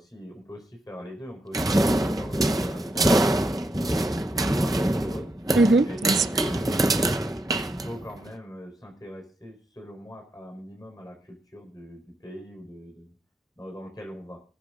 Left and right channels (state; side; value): normal; both; correlation 0.81